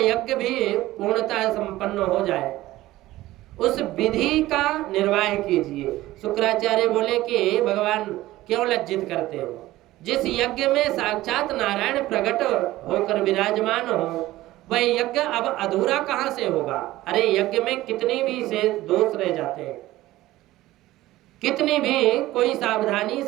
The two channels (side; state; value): left; quieter; 16.6 dB